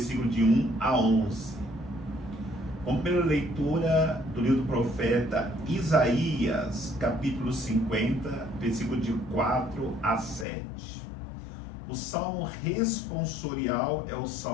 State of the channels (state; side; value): drops out; right; at 10.5 s